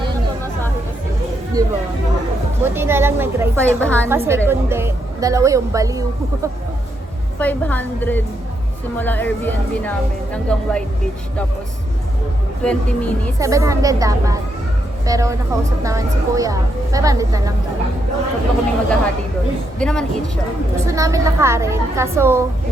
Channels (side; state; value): both; normal; correlation 0.79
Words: Yan na. Diba? Buti na lang nag-rice 500. Kasi kundi, dalawa yung baliw. 500 simula Airbnb namin hanggang White Beach. Tapos 20 minutes. 700 dapat. Pero nakausap naman si Kuya. 500 na lang daw. Tatlo kami maghahati doon. Hindi naman eat siya. Gusto namin lakarin, kaso